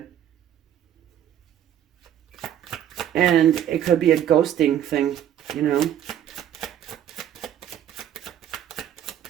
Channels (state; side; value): quieter; left; 10.5 dB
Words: And it could be a ghosting thing, you know.